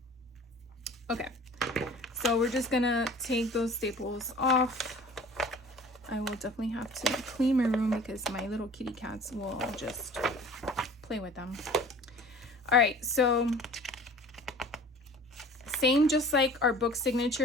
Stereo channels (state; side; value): normal; both; correlation 0.45